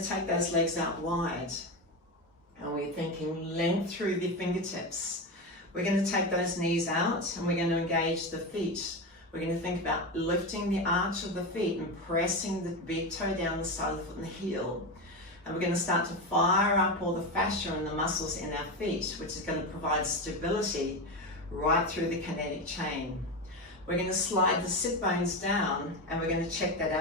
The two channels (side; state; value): both; normal; correlation 0.18